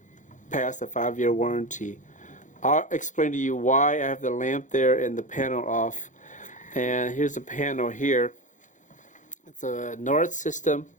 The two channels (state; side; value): late; right; 0.36 ms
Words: passed a 5-year warranty. I'll explain to you why I have the lamp there and the panel off. And here's the panel here. It's a Noritz system,